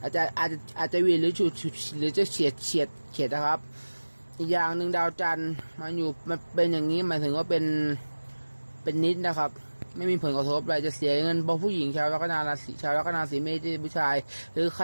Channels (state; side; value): inverted; both; correlation -1.00